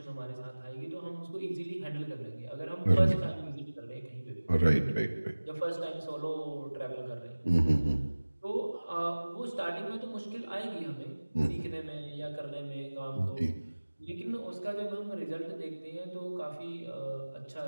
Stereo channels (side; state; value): both; inverted; correlation -1.00